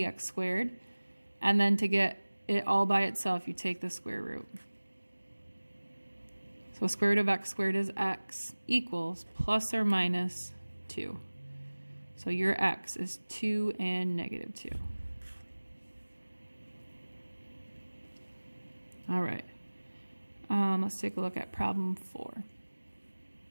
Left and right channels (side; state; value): both; inverted; correlation -1.00